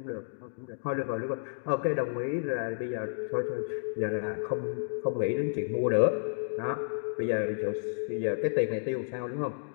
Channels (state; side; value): silent; right; digital silence